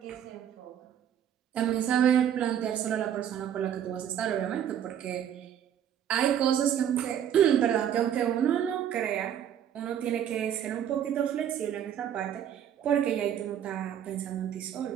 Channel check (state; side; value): quieter; left; 9.7 dB